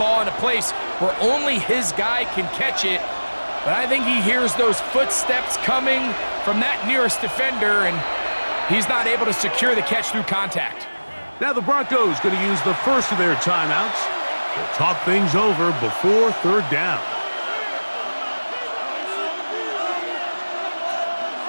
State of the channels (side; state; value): both; inverted; correlation -1.00